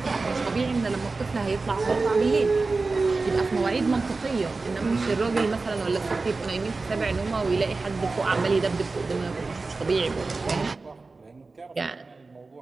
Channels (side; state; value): left; quieter; 3.8 dB